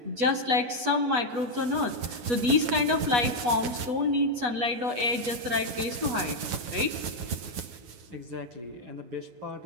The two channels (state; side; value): late; left; 8.2 ms